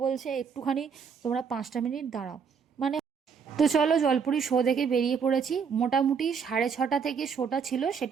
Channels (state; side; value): quieter; left; 6.4 dB